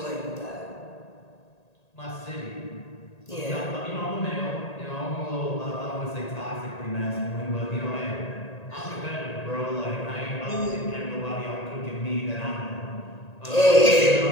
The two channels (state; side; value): late; right; 1.8 ms